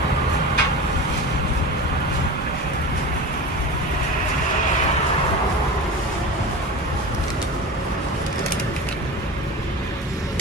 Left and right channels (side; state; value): both; normal; correlation 0.30